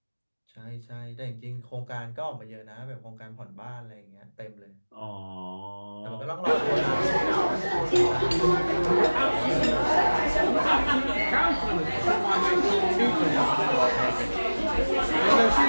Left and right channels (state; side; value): inverted; both; correlation -1.00